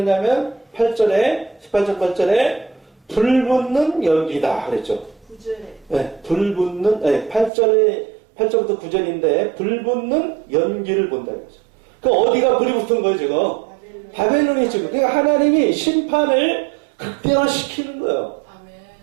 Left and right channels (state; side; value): drops out; left; at 7.5 s